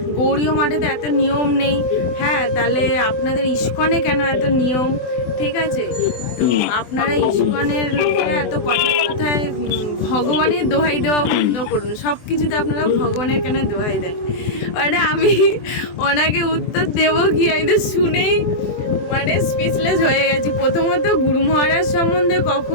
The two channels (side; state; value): right; late; 24 ms